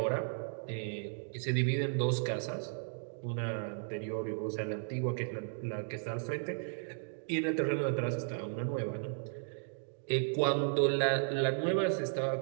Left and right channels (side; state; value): left; silent; digital silence